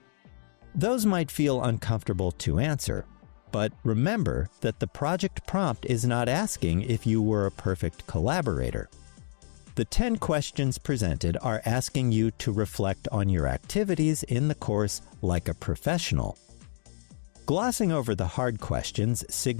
Those might feel uncomfortable to answer, but remember that the project prompt is not asking if you were a perfect collaborator. The 10 questions presented are asking you to reflect on your activities in the course like a professional. Glossing over the hard questions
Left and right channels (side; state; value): right; silent; digital silence